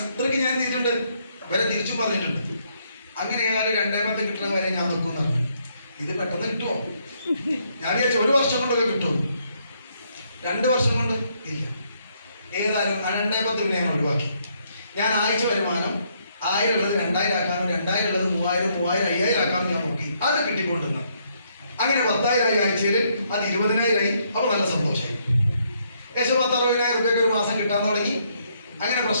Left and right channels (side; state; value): both; inverted; correlation -0.72